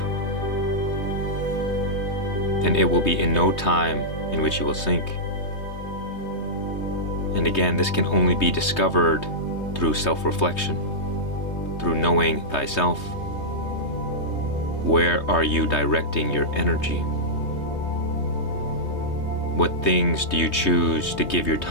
then it will be in no time in which you will sink. And again, this can only be discovered through self-reflection, through knowing thyself. Where are you directing your energy? What things do you choose to give your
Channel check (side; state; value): right; late; 3.2 ms